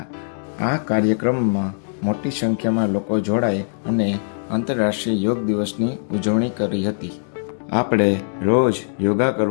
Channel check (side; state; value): right; silent; digital silence